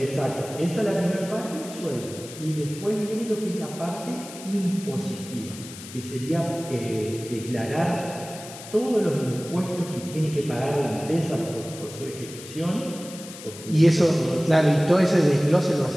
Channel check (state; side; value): noise; left; hiss, 14 dB below the sound